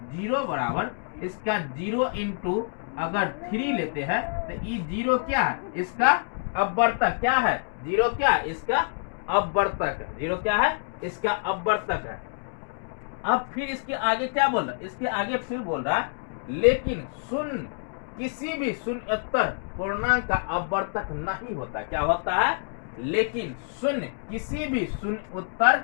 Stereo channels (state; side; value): silent; right; digital silence